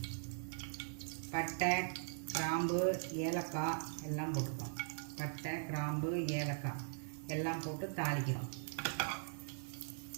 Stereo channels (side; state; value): left; silent; 51 dB below the other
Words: பட்டை, கிராம்பு, ஏலக்காய் எல்லாம் போட்டுக்கிறோம். பட்டை, கிராம்பு, ஏலக்காய் எல்லாம் போட்டு தாளிக்கிறோம்.